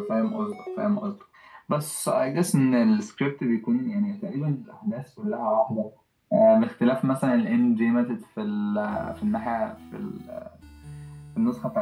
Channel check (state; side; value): identical; both; correlation 1.00